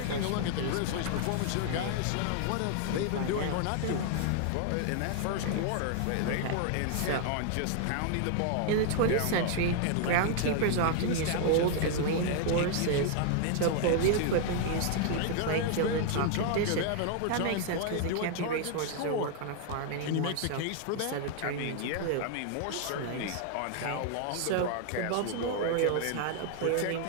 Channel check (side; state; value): both; different; correlation 0.00